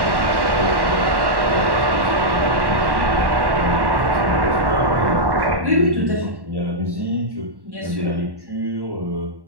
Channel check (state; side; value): late; left; 1.1 ms